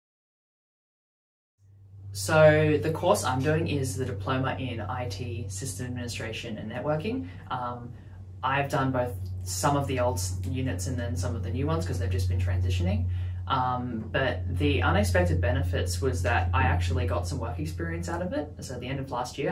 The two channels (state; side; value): identical; both; correlation 1.00